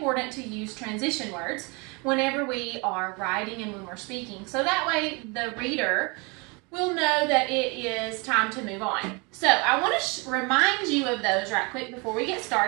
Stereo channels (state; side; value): quieter; left; 29.7 dB